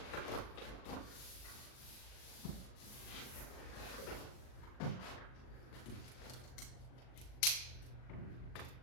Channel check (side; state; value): right; late; 39 ms